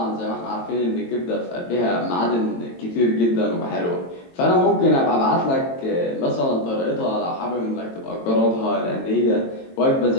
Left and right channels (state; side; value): late; right; 22 ms